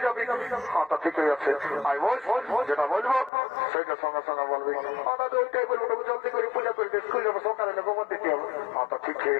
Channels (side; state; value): right; drops out; at 3.3 s